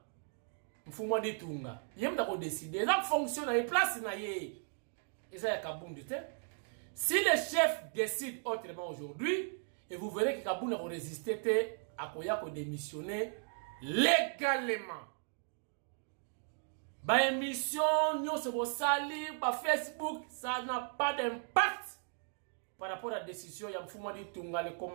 Mfumwa Ditunga. Yem da ko décider. Ça fonctionne à place na ye. Et ça y a Kabundu te. Si le chef décide autrement aujourd'hui, et vous verrez que Kabundu a résisté à Koya ko démissionner légalement. Ba émission, nous se sali, ba Facebook, ça n'a pas d'impact par rapport à la décision de Mfumwa Ditunga, le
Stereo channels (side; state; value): left; silent; 53 dB below the other